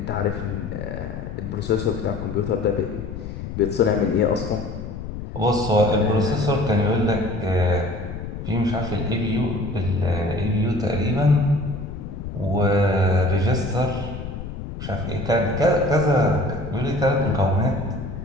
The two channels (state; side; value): noise; left; rumble, 8 dB below the sound